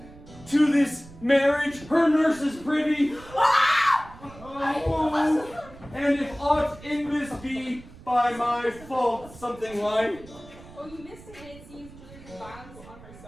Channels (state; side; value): noise; right; rumble, 19 dB below the sound